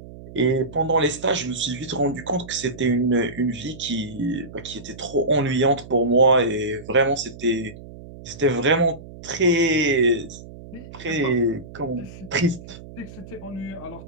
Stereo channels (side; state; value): right; noise; hum, 16 dB below the sound